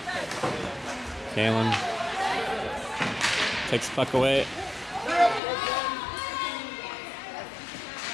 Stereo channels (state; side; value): drops out; right; at 5.4 s